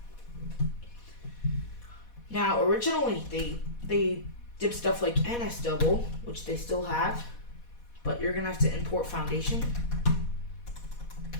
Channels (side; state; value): right; late; 4.1 ms